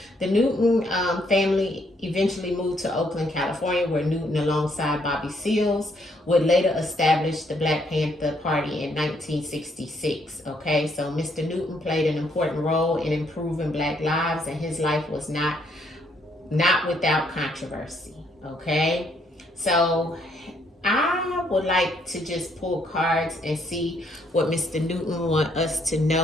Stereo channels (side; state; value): both; normal; correlation 0.70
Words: The Newton family eventually moved to Oakland, California, where Newton, alongside Bobby Seals, would later establish the Black Panther Party in 1966. Okay, so Mr. Newton played an important role in improving Black lives, and his life was not without controversy. Okay, so I would like to just pull cards and see what Mr. Newton want us to